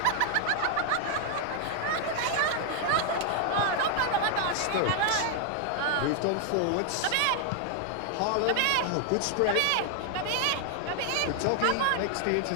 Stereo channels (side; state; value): both; different; correlation 0.00